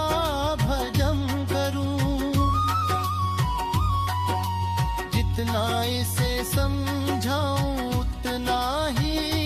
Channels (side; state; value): both; identical; correlation 1.00